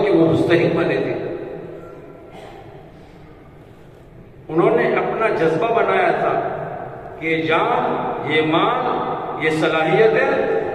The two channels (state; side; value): identical; both; correlation 1.00